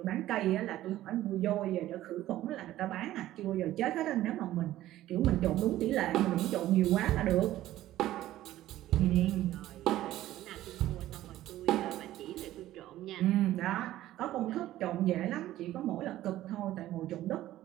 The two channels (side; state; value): left; quieter; 14.3 dB